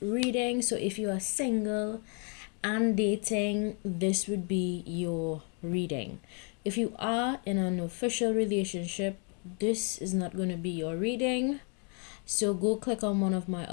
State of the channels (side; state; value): right; quieter; 38.2 dB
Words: reading. So if you are single and dating, this would be your reading. If you are in an official relationship, this is not going to be your reading. So go click on one of my